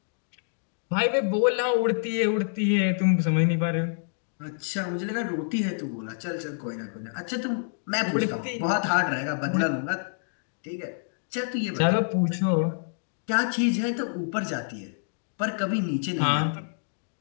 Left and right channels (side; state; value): right; silent; digital silence